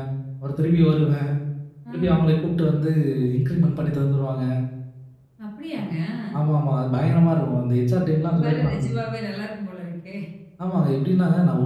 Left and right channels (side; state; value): both; identical; correlation 1.00